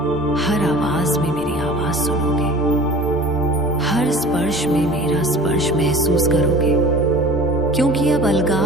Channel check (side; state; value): right; noise; rumble, 22 dB below the sound